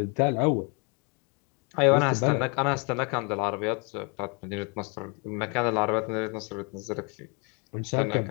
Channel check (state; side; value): quieter; right; 33.6 dB